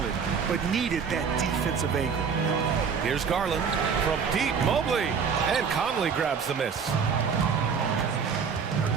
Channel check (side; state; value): left; quieter; 6.3 dB